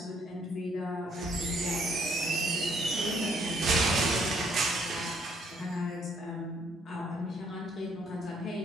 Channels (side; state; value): both; normal; correlation 0.67